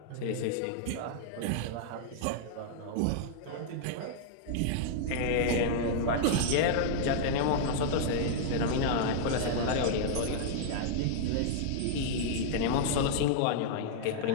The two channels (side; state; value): both; different; correlation -0.01